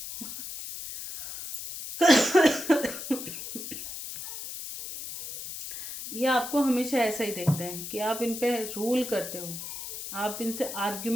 ये आपको हमेशा ऐसा ही देखते हैं कि आप इन पे रूल करते हो, आप इनसे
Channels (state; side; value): noise; left; hiss, 9 dB below the sound